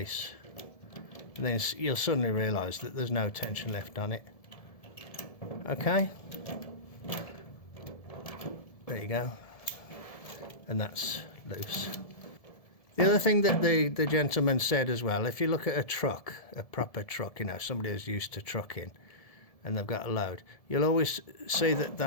And then you'll suddenly realise that there's no tension left on it. Okay? There you go. And that's loose. The other thing that the gentleman said as well, if you look at a truck, a proper truck, you know, somebody who's used to trucking and they've got a load, you'll always see that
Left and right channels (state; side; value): late; right; 1.7 ms